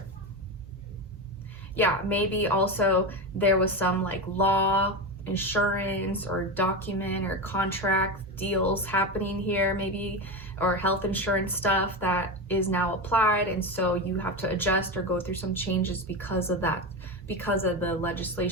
Yeah, maybe also there was some like law, insurance, or document or contract deals happening here, maybe, or health insurance stuff that is now applied, and so you have to adjust or go through some changes because of that, because of the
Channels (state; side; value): normal; both; correlation 0.18